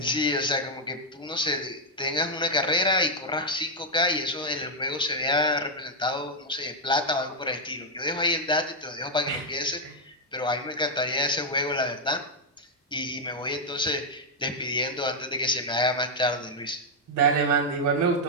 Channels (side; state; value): both; normal; correlation -0.01